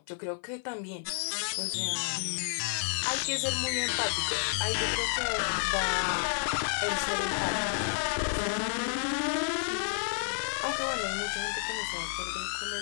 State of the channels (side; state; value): right; silent; 55 dB below the other